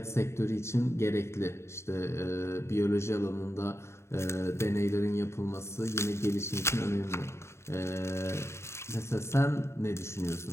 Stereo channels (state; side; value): late; right; 0.13 ms